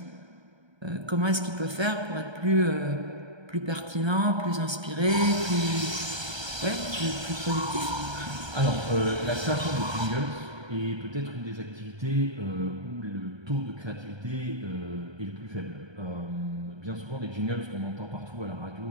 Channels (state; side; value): late; left; 1.3 ms